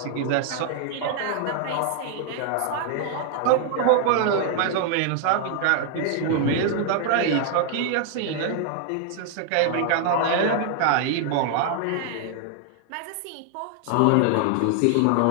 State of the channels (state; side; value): different; both; correlation 0.00